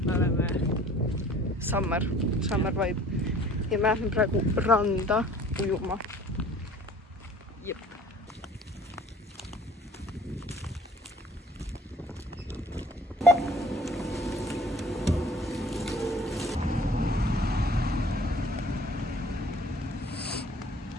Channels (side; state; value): both; normal; correlation 0.50